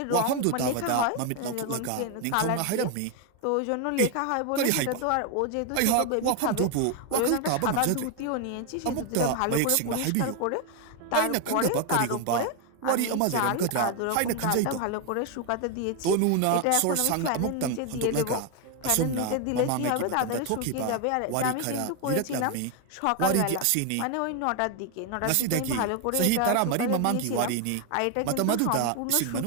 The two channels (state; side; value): different; both; correlation 0.01